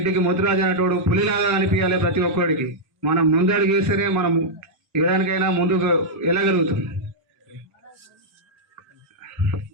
ముదిరాజు అన్నట్టు పులిలాగా కనిపించాలి. ప్రతి ఒక్కరికి మనం ముందడుగు వేస్తేనే మనం ఏదానికైనా ముందుకు వెళ్ళగలుగుతాం.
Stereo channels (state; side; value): late; left; 1.1 ms